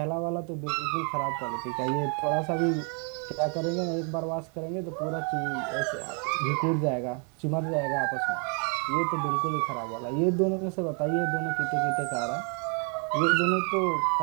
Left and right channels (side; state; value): left; quieter; 38.5 dB